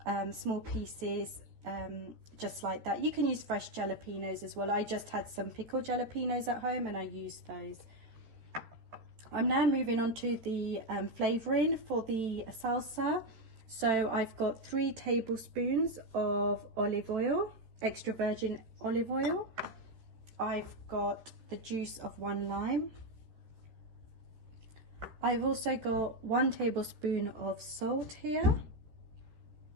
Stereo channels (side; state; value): left; late; 13 ms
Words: small pieces, just like that. You can use fresh jalapeños as well. I just had some pickled jalapeños at home and I used those. I'm now moving on to the flavouring for the salsa. So I've got 3 tablespoons of olive oil, extra virgin olive oil. I've got the juice of 1 lime. I've also got 1 tablespoon of salt here.